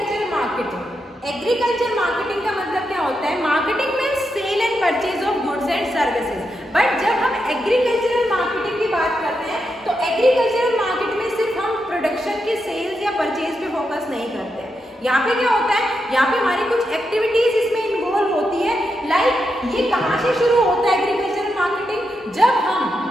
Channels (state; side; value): normal; both; correlation 0.85